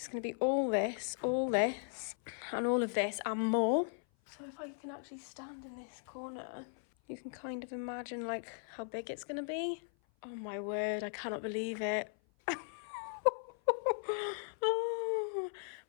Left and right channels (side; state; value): right; silent; 53 dB below the other